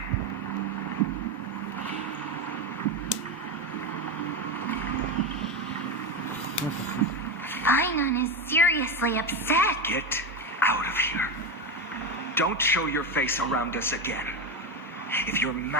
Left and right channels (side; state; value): both; normal; correlation 0.15